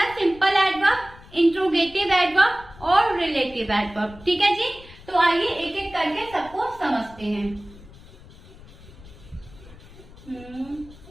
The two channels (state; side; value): noise; left; rumble, 20 dB below the sound